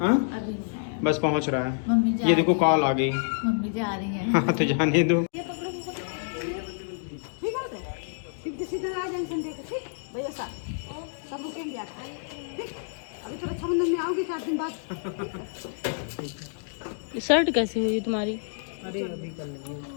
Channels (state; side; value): silent; right; digital silence